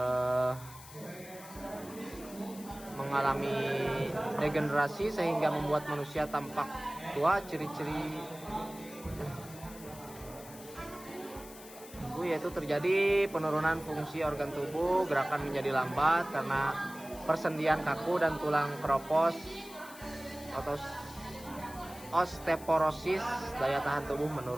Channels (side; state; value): left; noise; hiss, 17 dB below the sound